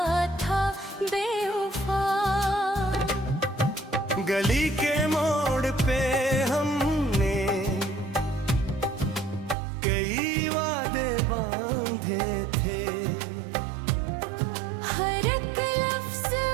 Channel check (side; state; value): left; drops out; at 9.6 s